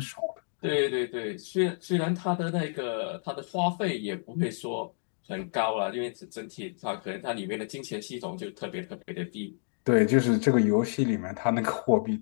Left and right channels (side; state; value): right; silent; digital silence